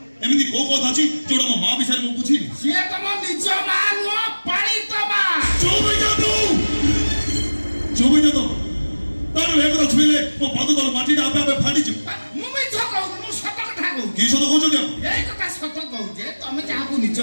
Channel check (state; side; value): inverted; both; correlation -1.00